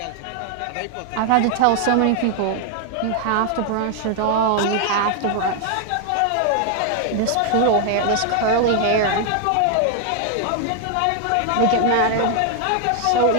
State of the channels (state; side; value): different; both; correlation 0.00